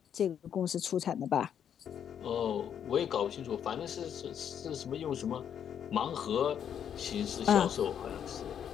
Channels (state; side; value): quieter; right; 8.7 dB